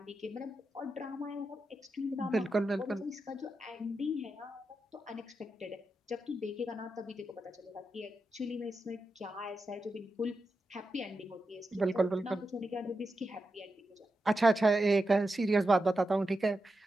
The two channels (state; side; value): normal; both; correlation 0.89